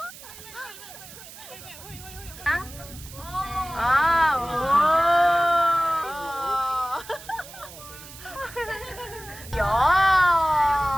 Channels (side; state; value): right; noise; hiss, 16 dB below the sound